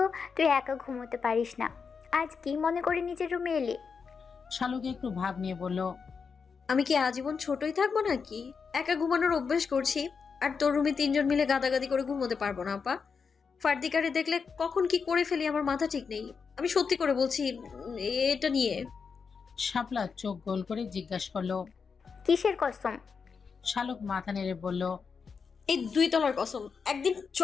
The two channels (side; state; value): right; quieter; 5.6 dB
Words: তুই একা ঘুমোতে পারিস না, আজ কি মনে করে নিজের রুমে এলি? শালুক একটু ভাব নিয়ে বলল, আমি কি আজীবন ছোটই থাকবো নাকি? একা ঘুমানোর অভ্যাস করছি, আর তোর রুমে 3 জন মিলে গাদাগাদি করে ঘুমোতে পারবো না আপা। ফার্দিকারে দেখলে কখন কি করে ফেলি আমার মাথা ঠিক নেই। আমি সত্যি করে বলছি এটা নিয়ে। শাপলা চোখ গোল করে জিজ্ঞাসা করলো, কিসের কসম? শালুক মাথা নেড়ে বলল, এই 2 তলার কসম। একদিন